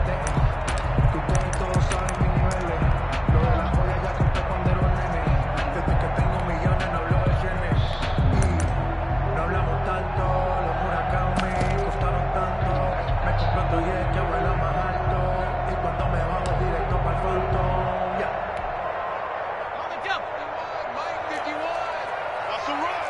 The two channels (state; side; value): identical; both; correlation 1.00